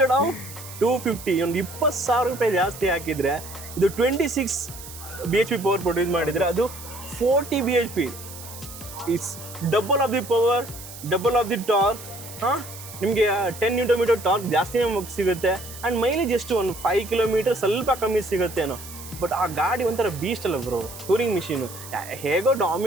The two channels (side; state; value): right; noise; hiss, 14 dB below the sound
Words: ಆಫ್ 250 ಒಂದು 20,000 ರೂಪಾಯಿ ಜಾಸ್ತಿ ಹಾಕಿದರೆ ಇದು 26 BHP ಪವರ್ ಪ್ರೊಡ್ಯೂಸ್ ಮಾಡಿದರೆ ಅದು 40 BHP. It's double of the power, double of the torque. ಹಾಂ, ನಿಮಗೆ 10 Nm ಟಾರ್ಕ್ ಜಾಸ್ತಿನೇ ಸಿಗುತ್ತೆ. ಆ್ಯಂಡ್ ಮೈಲೇಜ್ ಎಷ್ಟು ಒಂದು 5 ಕಿಲೋಮೀಟರ್ ಸ್ವಲ್ಪ ಕಮ್ಮಿ ಸಿಗುತ್ತೇನೋ. ಬಟ್ ಆ ಗಾಡಿ ಒಂಥರ ಬೀಸ್ಟ್ ಅಲ್ಲ ಬ್ರೋ, ಟೂರಿಂಗ್ ಮಿಷಿನು. ಹೇಗೋ